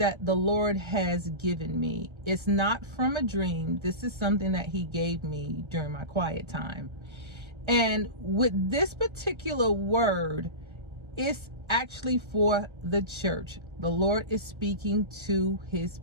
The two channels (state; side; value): late; left; 1.3 ms